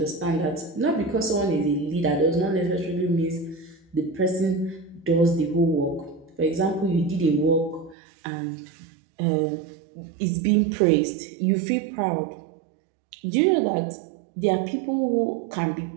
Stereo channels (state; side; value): drops out; left; at 8.0 s